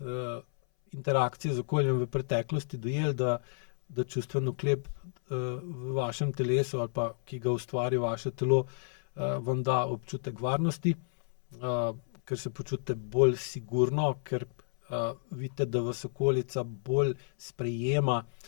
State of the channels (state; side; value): silent; right; 57 dB below the other